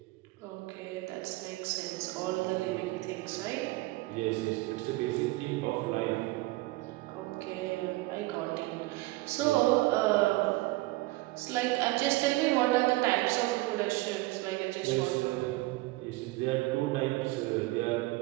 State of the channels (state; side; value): quieter; left; 20.6 dB